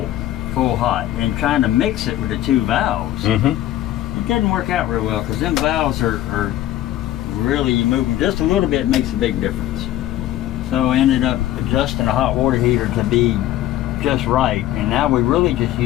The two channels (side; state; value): right; quieter; 13.6 dB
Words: hot and trying to mix it with the two valves. It didn't work out real well because them valves are really, you move them just a little bit, makes a big difference. So I ended up adjusting the hot water heater to be just right, and now we really just